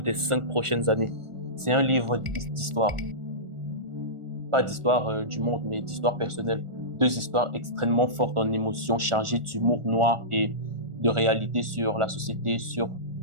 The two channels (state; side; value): late; left; 1.4 ms